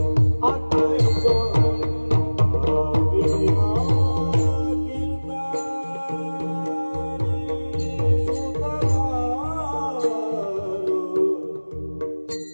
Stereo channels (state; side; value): inverted; both; correlation -1.00